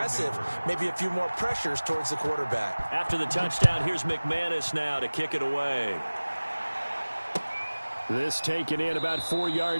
maybe a few more pressures towards the quarterback. After the touchdown, here's McManus now to kick it away. This taken in about 4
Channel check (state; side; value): inverted; both; correlation -1.00